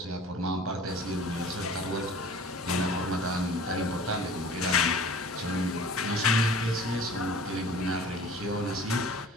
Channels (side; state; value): both; normal; correlation 0.45